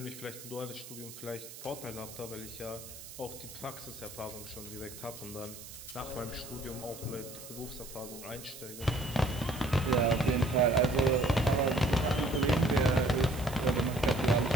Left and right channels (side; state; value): right; noise; hiss, 14 dB below the sound